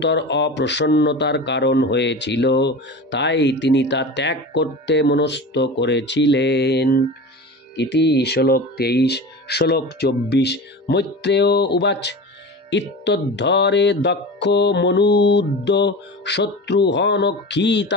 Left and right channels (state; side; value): normal; both; correlation 0.31